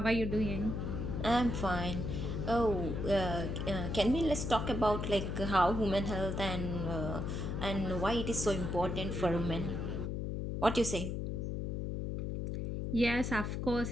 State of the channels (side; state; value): left; noise; hum, 2 dB below the sound